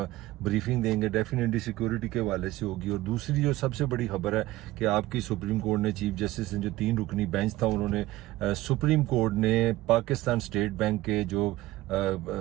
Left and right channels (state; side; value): quieter; left; 17.0 dB